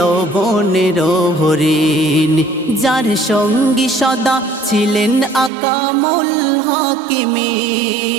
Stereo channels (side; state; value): left; drops out; at 5.5 s